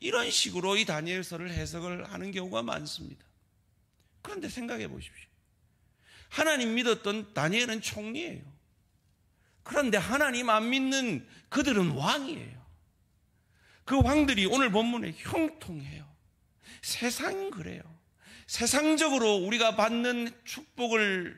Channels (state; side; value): identical; both; correlation 1.00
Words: 이런 식으로 이 다니엘서를 해석을 하는 경우가 많습니다. 그런데 생각해 보십시오. 하나님 믿었던 다니엘은 총리예요. 그런데 하나님 안 믿는 그들은 왕이에요. 그 왕들이 오늘 본문에 형통해요. 세상은 그래요. 세상적으로 우리가 받는